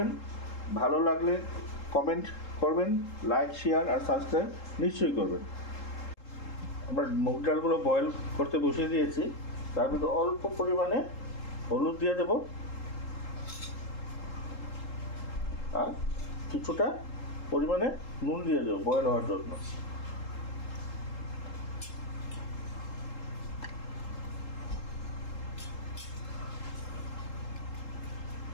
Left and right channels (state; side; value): late; right; 3.8 ms